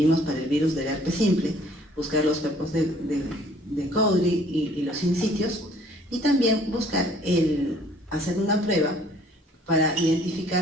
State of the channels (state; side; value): normal; both; correlation 0.58